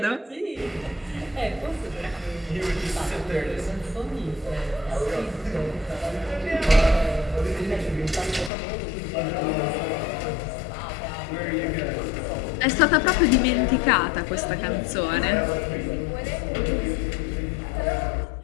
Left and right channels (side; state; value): right; drops out; at 8.5 s